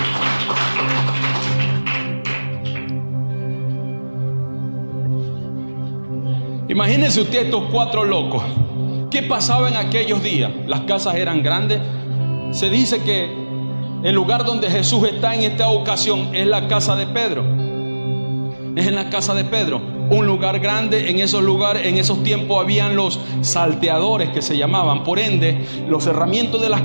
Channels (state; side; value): inverted; both; correlation -1.00